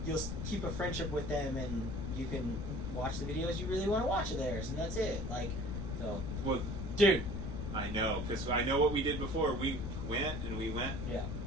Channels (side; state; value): left; noise; rumble, 4 dB below the sound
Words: keep a friendship with them, and you can watch the videos you really want to watch of theirs, and that's it. Like, so. Well, dude. I know, because I know what we did before. We went. Yeah.